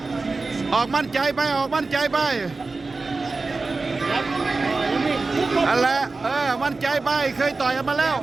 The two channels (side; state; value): left; quieter; 3.7 dB